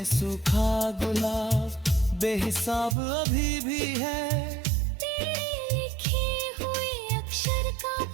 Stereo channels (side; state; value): left; drops out; at 3.0 s